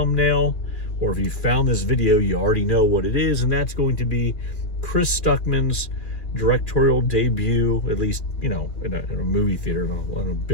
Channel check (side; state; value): right; late; 2.8 ms